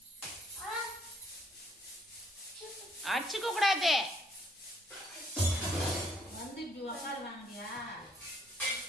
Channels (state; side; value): normal; both; correlation 0.67